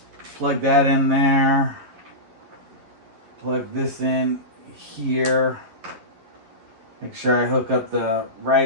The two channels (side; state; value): left; late; 11 ms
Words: plug that in there. Plug this in here. Make sure I hook up the